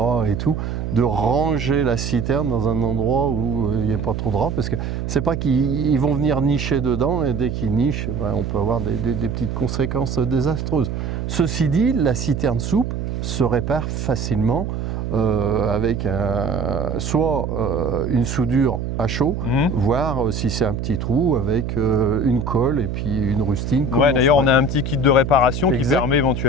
et tout, de ranger la citerne dans un endroit où il n'y a pas trop de rats, parce que c'est pas qu'ils vont venir nicher dedans, et dès qu'ils nichent, on peut avoir des petites conséquences désastreuses. Ceci dit, la citerne souple se répare facilement avec soit une soudure à chaud, voir si c'est un petit trou avec une colle et puis une rustine. Ouais, d'ailleurs, on a un petit kit de réparation qui permet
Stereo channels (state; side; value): noise; right; hum, 4 dB below the sound